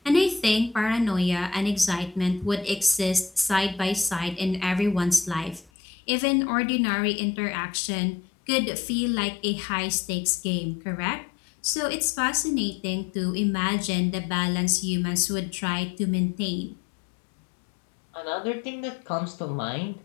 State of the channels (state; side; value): drops out; right; at 5.7 s